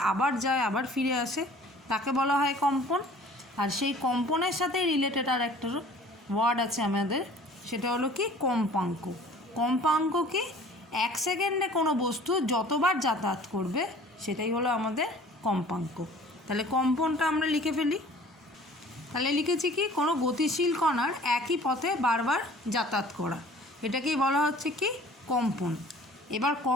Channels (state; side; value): normal; both; correlation 0.49